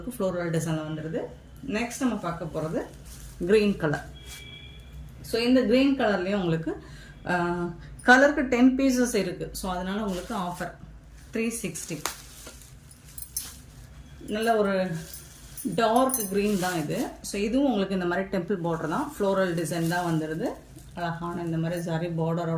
ஃப்ளோரல் டிசைனில் வந்துடுது. நெக்ஸ்ட் நம்ம பார்க்க போகிறது க்ரீன் கலர். ஸோ இந்த க்ரீன் கலர்லேயும் உங்களுக்கு கலருக்கு 10 பீசஸ் இருக்குது. ஸோ அதனால் உங்களுக்கு ஆஃபர் 360. நல்ல ஒரு டார்க் க்ரீன் தான் இது. ஸோ இதுவும் உங்களுக்கு இந்த மாதிரி டெம்பிள் பார்டர் தான், ஃப்ளோரல் டிசைன் தான் வந்துடுது. அழகான இந்த மாதிரி சாரி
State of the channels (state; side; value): identical; both; correlation 1.00